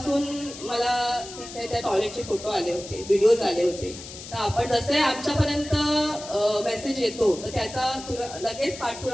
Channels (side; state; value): left; noise; hiss, 13 dB below the sound